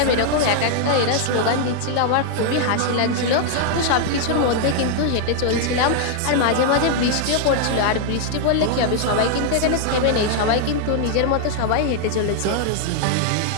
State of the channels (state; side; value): different; both; correlation 0.00